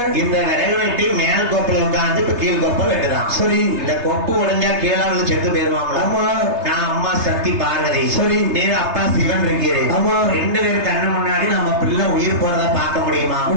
இந்த விறகு வெட்டி மேல் கொப்புல உட்கார்ந்து இப்ப கீழ் கொப்பை வெட்டுதான். சரி. இந்த கொப்பு உடைஞ்சா கீழே வந்து செத்து போயிருவாங்களா? ஆமா. நான் அம்மா சக்தி பார்வதி. சரி. நீர் அப்பா சிவன் இருக்கிறேன். ஆமா. ரெண்டு பேரும் கண்ணு முன்னாடி நம்ம பிள்ளை உயிர் போறத பார்க்க முடியுமா?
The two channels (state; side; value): late; left; 3.3 ms